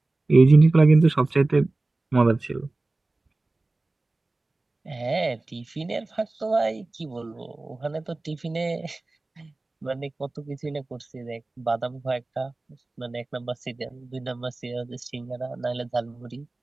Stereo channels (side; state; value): left; quieter; 3.1 dB